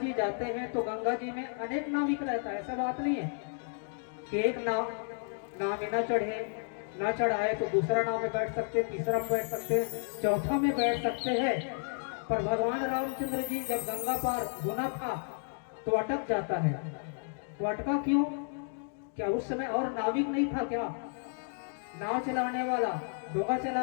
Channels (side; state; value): right; silent; 56 dB below the other